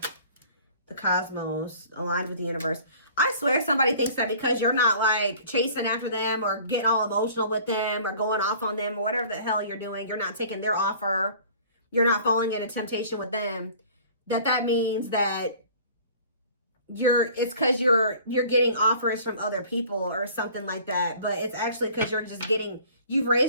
The cosmos, aligned with the universe. I swear somebody thinks that because you're not like chasing after them or getting all emotional with them or going off on them or whatever the hell you're doing, you're not taking their offer, you're not falling into temptation with them, that means that it's because you're getting offers from other people or something like that. But it's actually because you're just you've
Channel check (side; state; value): both; inverted; correlation -0.49